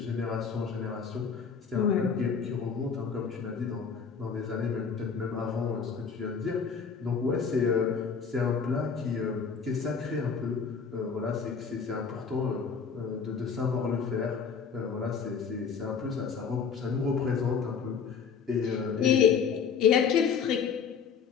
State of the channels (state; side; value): quieter; right; 6.2 dB